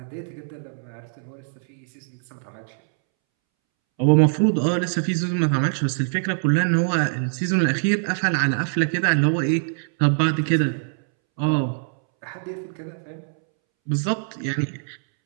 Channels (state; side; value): silent; left; 63 dB below the other